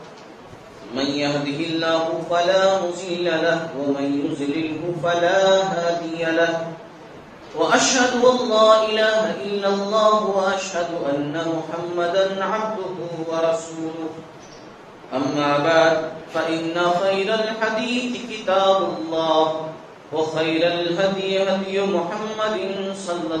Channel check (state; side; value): identical; both; correlation 1.00